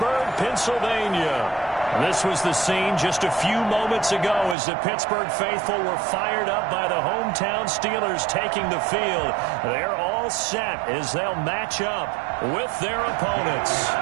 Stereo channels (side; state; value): left; drops out; at 4.5 s